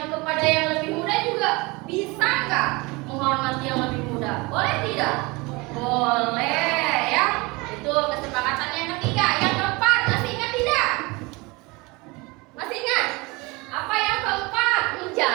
kepada yang lebih muda juga bisa nggak menghormati yang lebih muda? Boleh tidak? Boleh ya. Itu kesepakatan yang ketiga. Yang keempat, masih ingat tidak? Masih ingat? Apa yang keempat?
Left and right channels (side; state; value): left; quieter; 25.0 dB